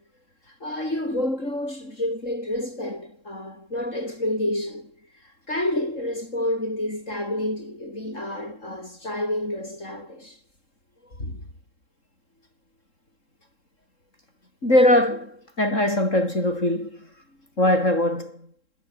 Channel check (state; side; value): late; right; 3.7 ms